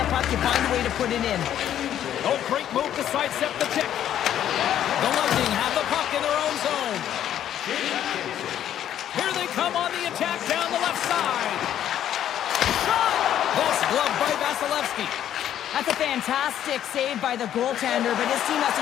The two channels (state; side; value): quieter; right; 10.8 dB